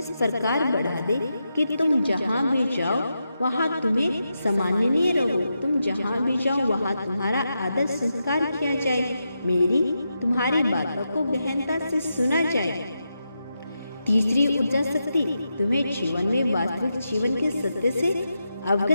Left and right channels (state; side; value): inverted; both; correlation -0.87